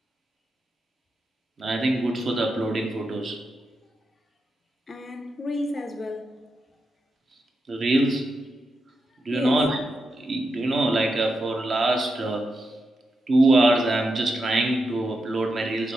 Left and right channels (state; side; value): normal; both; correlation 0.87